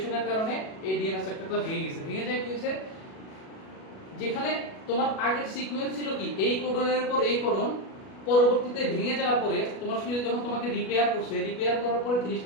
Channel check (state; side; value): late; right; 37 ms